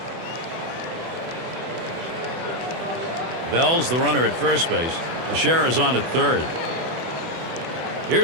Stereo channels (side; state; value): left; late; 24 ms